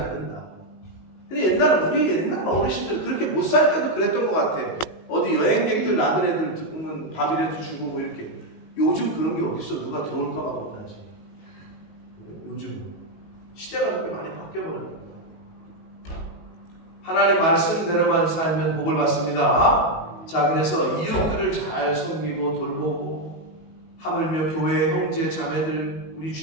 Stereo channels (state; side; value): late; right; 19 ms